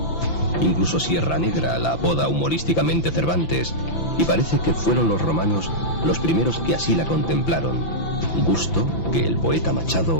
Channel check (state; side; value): late; right; 5.9 ms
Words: Incluso Sierra Negra la apoda humorísticamente Cervantes, y parece que fueron los romanos los primeros que así la contemplaron, gusto que el poeta